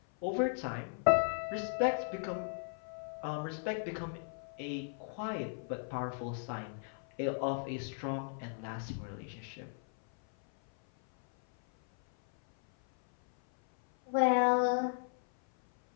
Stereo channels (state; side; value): silent; right; 54 dB below the other